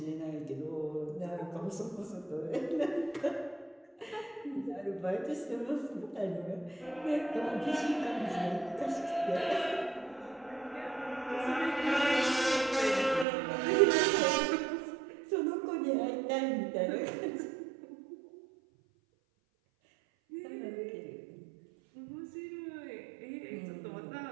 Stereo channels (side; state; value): left; drops out; at 13.2 s